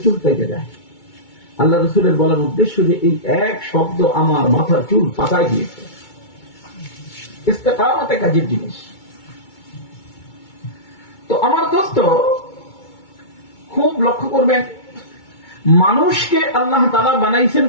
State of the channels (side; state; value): right; late; 2.2 ms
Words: চুল পেকে যায়। আল্লাহ রাসূলের বলার উদ্দেশ্য যে এই এক শব্দ আমার মাথার চুল পাকায় দিয়েছে। ইস্তেকামত এক আজীব জিনিস। তো আমার দোস্ত খুব লক্ষ্য করবেন, মানুষকে আল্লাহ তাআলা বানাইছেন